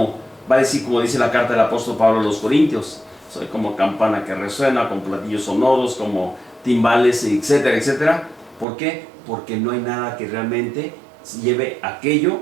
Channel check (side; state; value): left; drops out; at 8.7 s